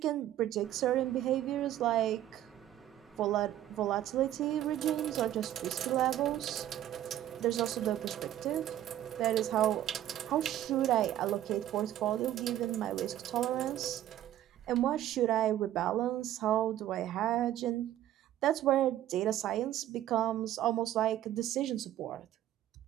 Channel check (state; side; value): quieter; left; 12.5 dB